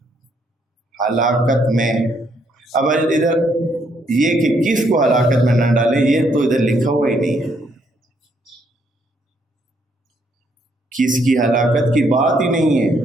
ہلاکت میں۔ اب ادھر یہ کہ کس کو ہلاکت میں نہ ڈالے، یہ تو ادھر لکھا ہوا ہی نہیں ہے، کس کی ہلاکت کی بات ہی نہیں ہے۔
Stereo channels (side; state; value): both; normal; correlation 0.72